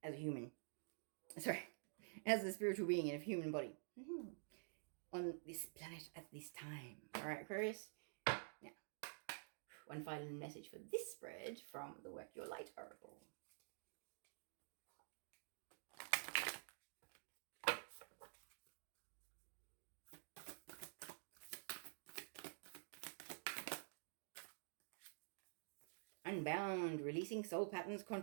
as a human. Sorry, as a spiritual being in a human body. On this planet at this time. Alright, Aquarius? Now, one final message for this spread from the Work Your Light oracle. Unbound, releasing soul patterns,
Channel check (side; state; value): left; silent; digital silence